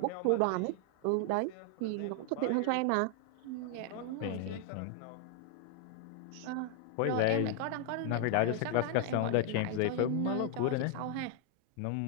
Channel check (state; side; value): different; both; correlation 0.00